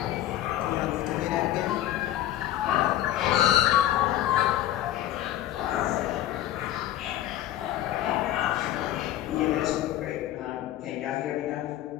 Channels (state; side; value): quieter; right; 13.3 dB